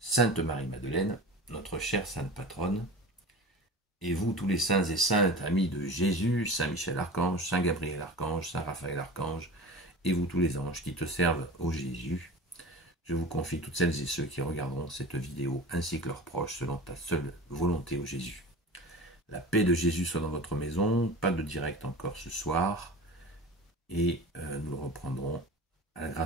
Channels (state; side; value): normal; both; correlation 0.35